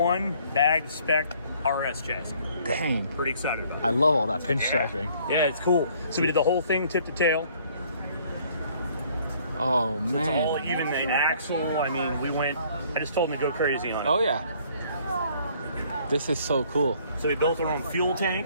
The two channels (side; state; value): both; inverted; correlation -0.60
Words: bagged spec RS chassis. Dang. Pretty excited about it. I love all that pinstriping. Yeah, it's cool. So we did the whole thing tip to tail. Oh, It's man. all even the axle. I mean, I just told him to go crazy on it. Oh, yeah. This is so cool. So we built our own fuel